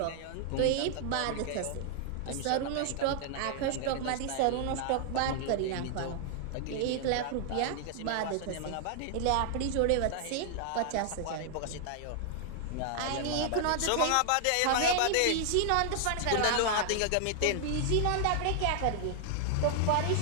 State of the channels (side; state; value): both; different; correlation 0.00